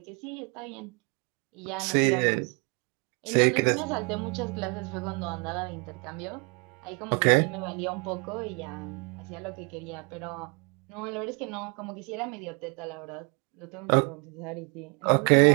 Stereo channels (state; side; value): quieter; left; 33.0 dB